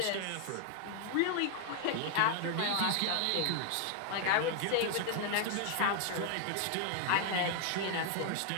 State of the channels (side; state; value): both; different; correlation 0.00